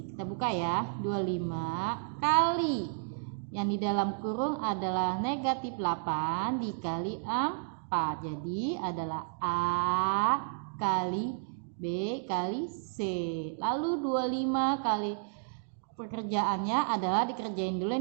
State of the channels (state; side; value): silent; left; digital silence